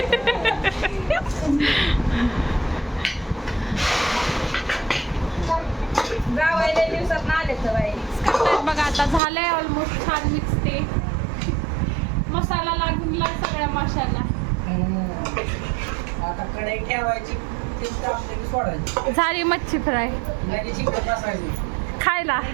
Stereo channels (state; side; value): drops out; left; at 9.2 s